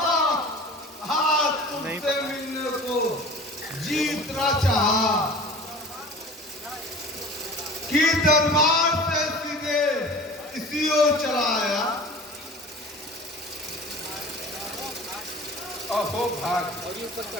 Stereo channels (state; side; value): normal; both; correlation 0.40